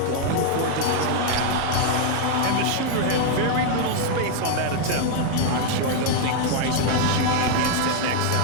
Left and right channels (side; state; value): both; different; correlation 0.00